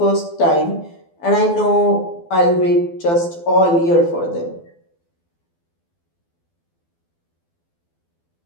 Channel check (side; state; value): right; late; 12 ms